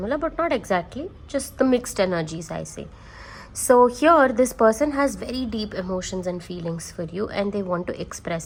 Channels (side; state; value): both; identical; correlation 1.00